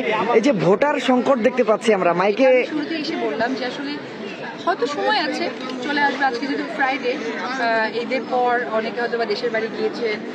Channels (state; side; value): identical; both; correlation 1.00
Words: এই যে ভোটার সংকট দেখতে পাচ্ছি আমরা, মাইকে শুরুতে এসে বললাম যে আসলে হয়তো সময় আছে, চলে আসবে। আজকে যেহেতু ফ্রাইডে, ঈদের পর অনেকে হয়তো বা দেশের বাড়ি গিয়েছেন,